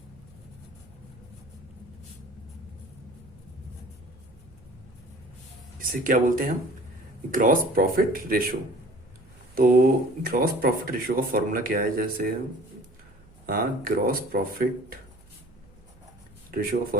इसे क्या बोलते हैं हम? Gross profit ratio. तो ग्रॉस प्रॉफिट रेशो का फॉर्मूला क्या है? जैसे हाँ, ग्रॉस प्रॉफिट रेशो का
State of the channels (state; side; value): noise; right; hum, 26 dB below the sound